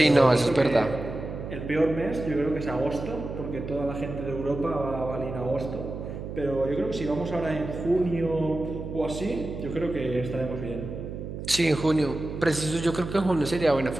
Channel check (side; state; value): right; noise; hum, 8 dB below the sound